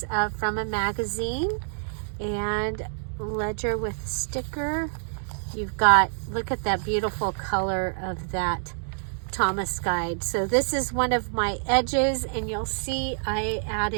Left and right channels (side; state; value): left; silent; digital silence